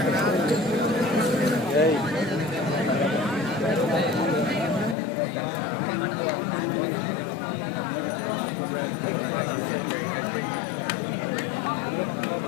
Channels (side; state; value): right; drops out; at 5.0 s